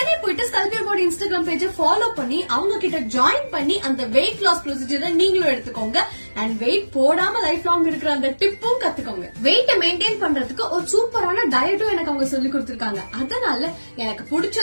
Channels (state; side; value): inverted; both; correlation -1.00